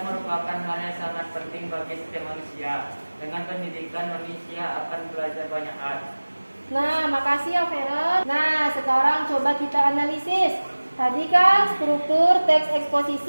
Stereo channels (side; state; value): both; inverted; correlation -1.00